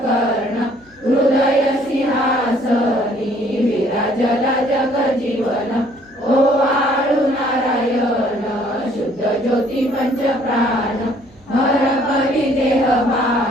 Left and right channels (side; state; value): left; noise; hum, 30 dB below the sound